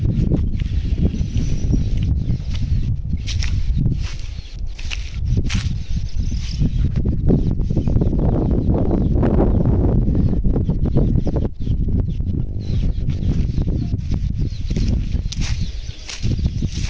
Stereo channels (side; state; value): both; identical; correlation 1.00